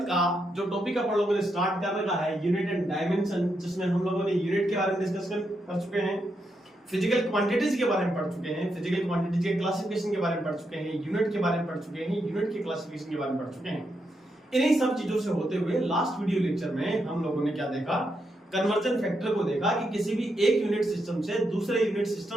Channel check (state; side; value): normal; both; correlation 0.82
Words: का जो टॉपिक अपन लोगों ने स्टार्ट कर रखा है यूनिट एंड डायमेंशन, जिसमें हम लोगों ने यूनिट के बारे में डिस्कस कर चुके हैं, फिजिकल क्वांटिटीज के बारे में पढ़ चुके हैं, फिजिकल क्वांटिटीज के क्लासिफिकेशन के बारे में पढ़ चुके हैं, यूनिट के बारे में पढ़ चुके हैं, यूनिट के क्लासिफिकेशन के बारे में पढ़ चुके हैं। इन्हीं सब चीजों से होते हुए लास्ट वीडियो लेक्चर में हम लोगों ने क्या देखा, कन्वर्जन फैक्टर को देखा कि किसी भी एक यूनिट सिस्टम से दूसरे यूनिट